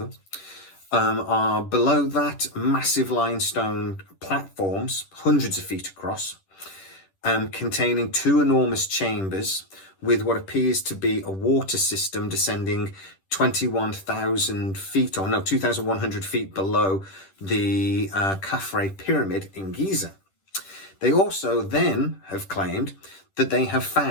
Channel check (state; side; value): late; right; 10 ms